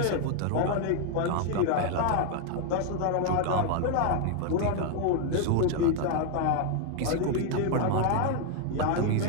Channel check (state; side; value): different; both; correlation 0.01